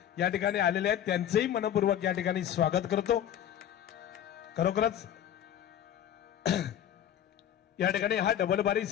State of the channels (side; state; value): right; quieter; 10.5 dB